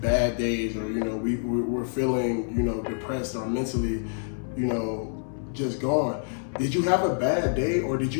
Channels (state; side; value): silent; right; 60 dB below the other